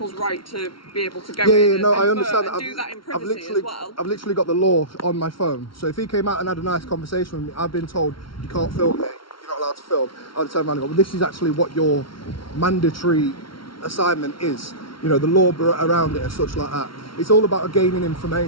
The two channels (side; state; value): right; late; 0.74 ms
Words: right to be able to go in and I understand and that. do that in privacy as well. I've literally got the law on my phone. So if he came out and had a nice conversation with me, I've been told you can't film me, you're not allowed to film. I'd turn around and go, well, this is actually what your mandatory assignment is. You know, the law around it and such like that. It's all about gaining